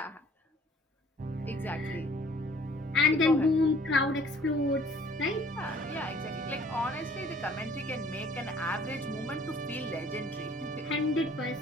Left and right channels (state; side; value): normal; both; correlation 0.55